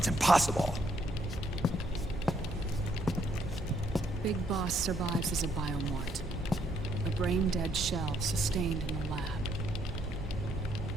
impossible. Big Boss survives as a biomort. A brain-dead shell sustained in the lab.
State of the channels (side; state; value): both; normal; correlation 0.71